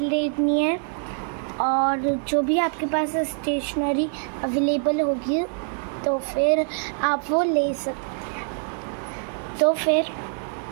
लेनी है, और जो भी आपके पास स्टेशनरी अवेलेबल होगी तो फिर आप वो ले सकते हैं। तो फिर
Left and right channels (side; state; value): left; silent; 57 dB below the other